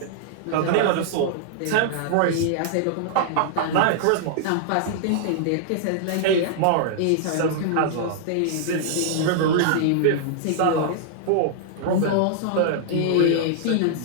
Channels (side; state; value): both; different; correlation -0.01